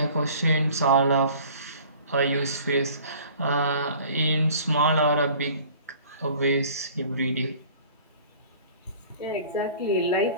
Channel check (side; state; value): both; inverted; correlation -0.48